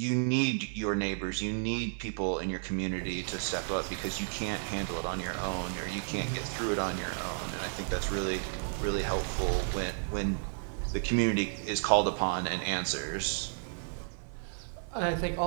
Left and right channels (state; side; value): silent; left; 56 dB below the other